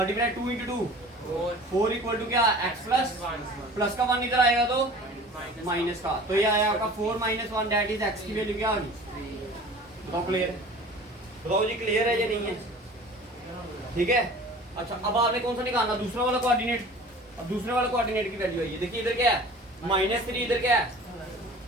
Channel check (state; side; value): normal; both; correlation 0.43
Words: 2 × 2 4 = क्या? x प्लस का 1 इधर आएगा तो माइनस का। तो ये आया आपका 4 - 1, दैट इज x की वैल्यू क्या आ गई? बताओ क्लियर है? बताओ जी क्लियर है या नहीं है? ठीक है। अच्छा अब आपने कौन सा निकालना? दूसरा वाला कोऑर्डिनेट। अब दूसरे वाला कोऑर्डिनेट की वैल्यू है, देखिए इधर क्या है? -3, इधर क्या है?